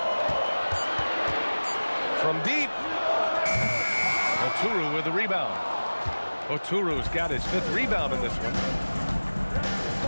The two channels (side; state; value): both; inverted; correlation -1.00